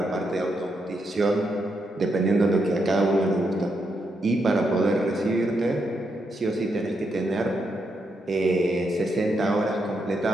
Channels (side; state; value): both; normal; correlation 0.81